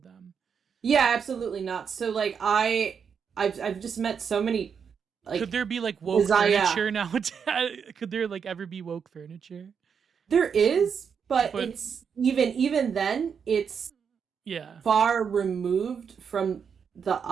yeah, absolutely not. So like I've just met so many Could like there be like woke design. Yeah, furniture now? Could there like ever be woke furniture? there is, but But it's even then it's yeah, far removed from the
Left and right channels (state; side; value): quieter; left; 6.8 dB